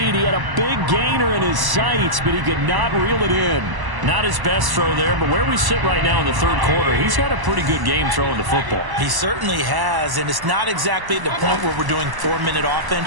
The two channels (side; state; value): left; late; 1.0 ms